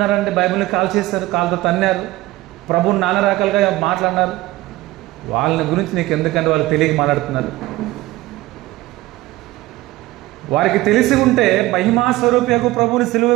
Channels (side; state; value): left; quieter; 17.9 dB